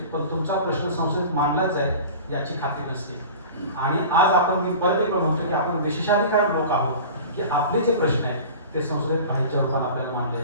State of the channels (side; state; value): both; inverted; correlation -0.37